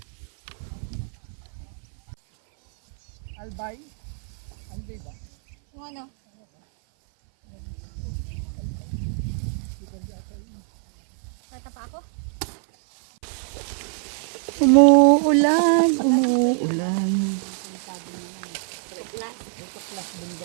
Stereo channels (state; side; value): silent; left; 58 dB below the other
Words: Albay? Albay ba? Yung ano? Kata pa ako? Umuulan, umuulan.